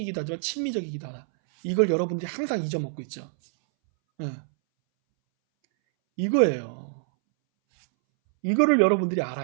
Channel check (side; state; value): left; silent; 61 dB below the other